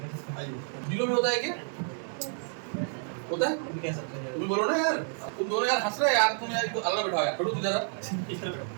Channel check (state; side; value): silent; left; 58 dB below the other